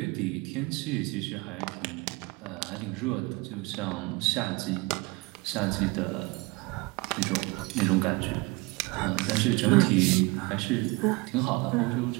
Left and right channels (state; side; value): quieter; left; 25.1 dB